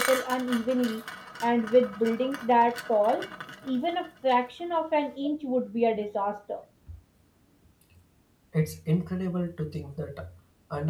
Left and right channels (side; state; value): both; identical; correlation 1.00